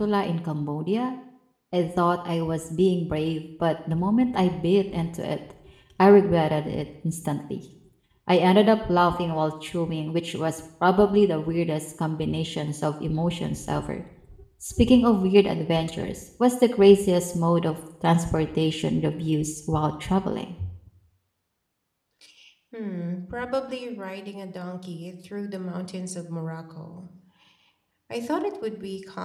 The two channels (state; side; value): identical; both; correlation 1.00